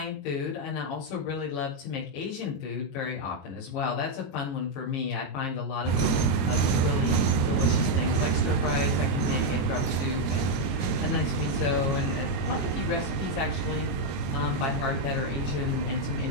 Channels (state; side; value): late; right; 22 ms